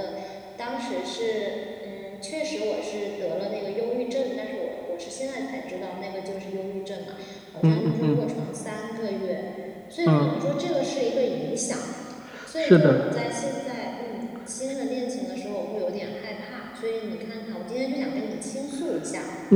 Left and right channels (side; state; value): both; identical; correlation 1.00